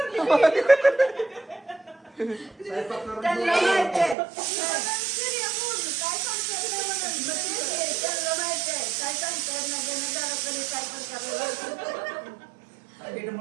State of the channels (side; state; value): left; drops out; at 4.2 s